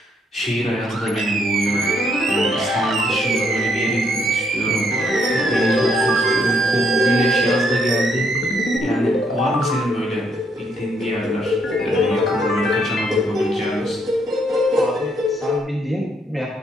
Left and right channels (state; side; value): normal; both; correlation 0.71